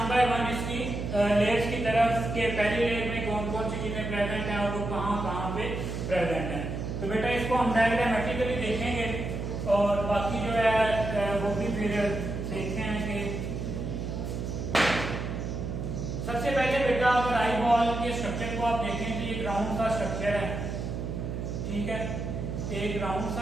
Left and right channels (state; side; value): noise; right; hum, 4 dB below the sound